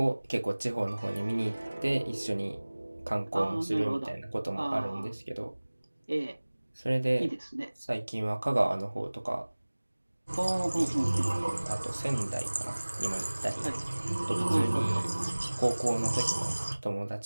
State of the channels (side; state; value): both; inverted; correlation -1.00